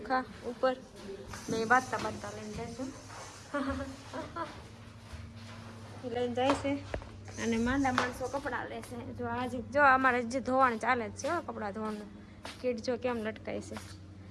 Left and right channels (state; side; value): identical; both; correlation 1.00